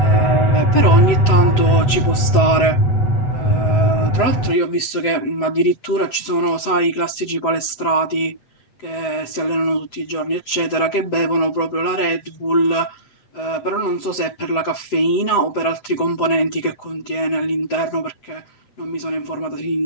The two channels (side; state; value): right; late; 7.9 ms